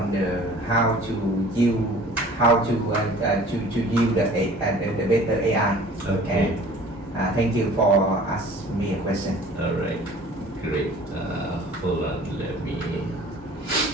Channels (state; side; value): normal; both; correlation 0.48